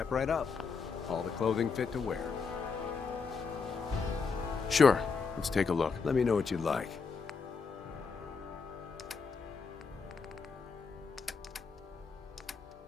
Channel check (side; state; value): right; quieter; 5.1 dB